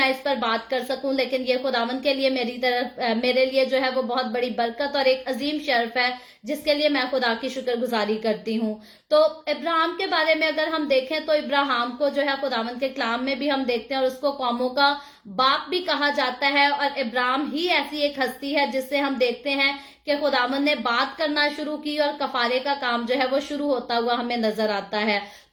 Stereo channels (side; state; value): both; identical; correlation 1.00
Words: इस पर बात कर सकूं, लेकिन ये खुदावंद के लिए मेरे लिए जो है वो बहुत बड़ी बरकत और एक अजीम शर्फ है, जिसके लिए मैं खुदा की शुक्रगुजारी करती हूँ। तो इब्राहिम के बारे में अगर हम देखें तो इब्राहिम को जो है खुदावंद के कलाम में भी हम देखते हैं और उसको कौमों का बाप भी कहा जाता है। और इब्राहिम ही ऐसी एक हस्ती है जिससे हम देखते हैं कि खुदावंद ने बात करना शुरू की और कफारे का काम जो है वो शुरू होता हुआ हमें नजर आता है।